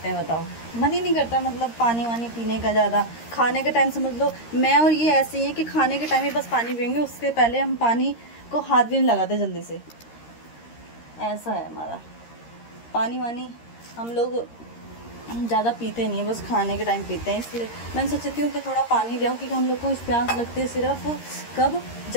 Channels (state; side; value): late; right; 13 ms